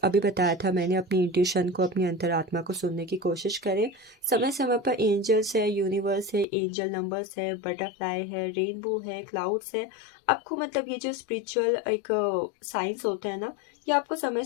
बताया था मैंने, अपनी इंट्यूशन को, अपनी अंतरात्मा को सुनने की कोशिश करें। समय समय पर एंजल्स है, यूनिवर्स है, एंजल नंबर्स है, बटरफ्लाई है, रेनबो है, क्लाउड्स है। आपको मतलब ये जो स्पिरिचुअल एक साइंस होता है ना, ये आपको समय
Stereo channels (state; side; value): drops out; right; at 6.5 s